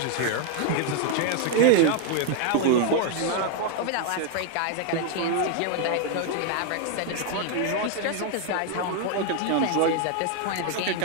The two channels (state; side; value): different; both; correlation 0.01